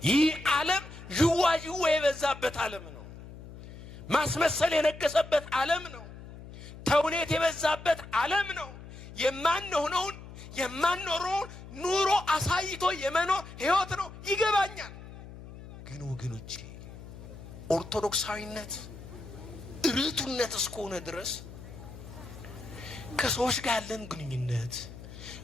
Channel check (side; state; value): left; noise; hum, 15 dB below the sound